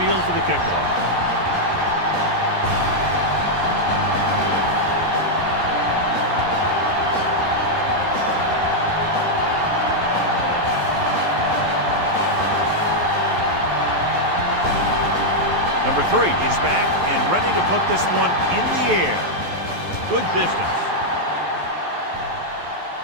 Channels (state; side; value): late; left; 11 ms